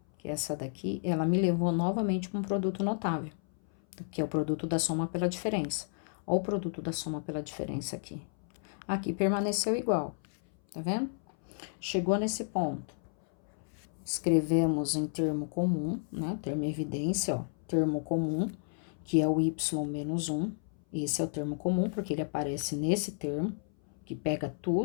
que é essa daqui, ela me levou novamente para um produto notável, que é o produto da soma pela diferença. Olha o produto da soma pela diferença aqui. Aqui permaneceu igual, tá vendo? Chegou nesse ponto. Escrevemos em termo comum, né? Termo evidência, ó. Termo comum, que é o y menos 1. Esse é o termo comum, porque ele aparece nesse termo, que pega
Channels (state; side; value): silent; right; 56 dB below the other